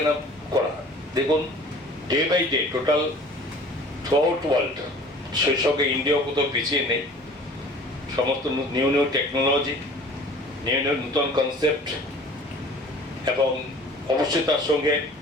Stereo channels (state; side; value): normal; both; correlation 0.47